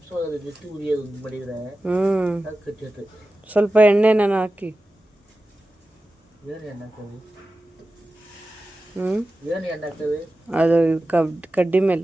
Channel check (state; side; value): normal; both; correlation 0.94